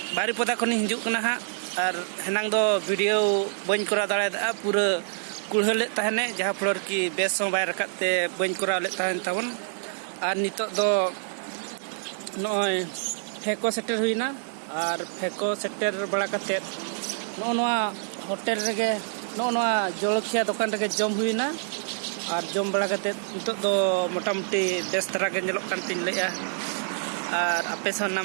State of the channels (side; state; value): left; silent; digital silence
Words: बारीपदा खनि हिजुक कना हा और हेनांग दो वीडियो बन करा दाड़ा पूरा कुड़हले तहने जहाँ फ्लोर की बेस बाय रकाते बन करा ले तहन तबन और नितोग दो नय फेको सेटर हुइना और फेको सेटर बड़ा कते नोआ होटल रेगे नोआ जलखिया दुकान रेगे जम हुइना और जम बड़ा करते नितोग दो मोटामुटी बेस तरह के नेलोग कान तिन लेया और आपे सा